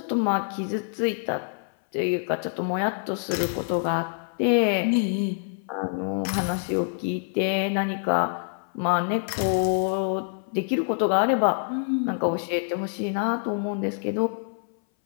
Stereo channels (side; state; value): right; silent; 60 dB below the other